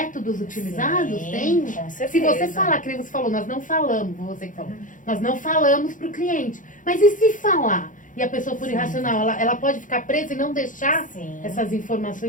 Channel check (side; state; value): right; late; 0.38 ms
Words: utilizados? Sim, Tem? com certeza. Se você falar, que nem você falou, nós não falamos, você que falou, nós não falamos para o cliente. Mas e se falar? E a pessoa for irracional, ela pode ficar presa e não deixar essas